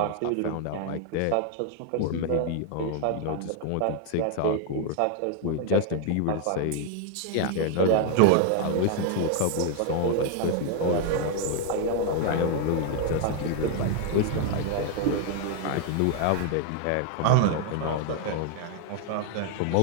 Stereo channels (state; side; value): different; both; correlation 0.00